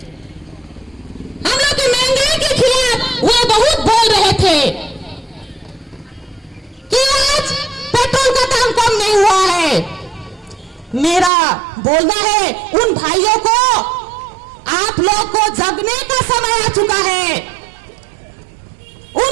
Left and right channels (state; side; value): drops out; left; at 11.3 s